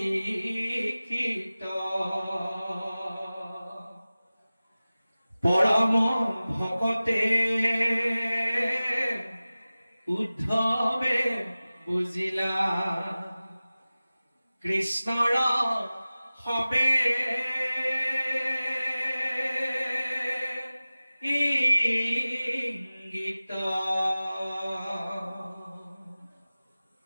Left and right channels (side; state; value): both; inverted; correlation -0.97